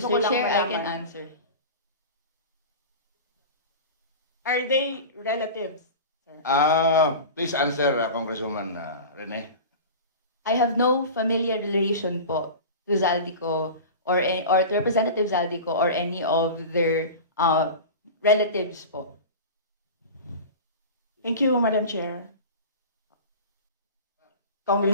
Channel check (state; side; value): inverted; both; correlation -0.31